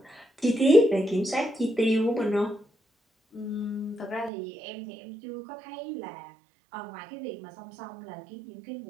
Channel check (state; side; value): drops out; left; at 4.3 s